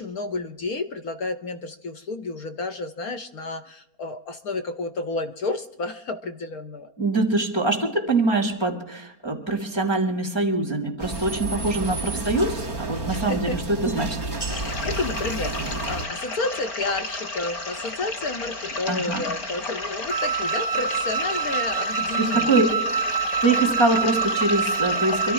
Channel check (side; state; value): right; late; 4.4 ms